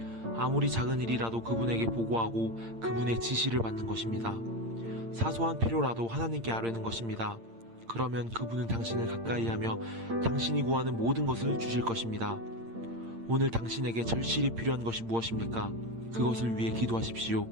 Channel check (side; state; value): left; late; 8.7 ms